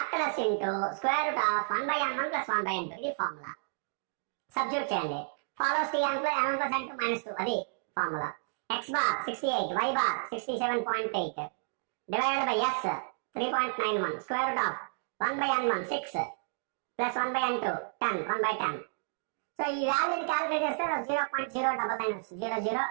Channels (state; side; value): silent; left; digital silence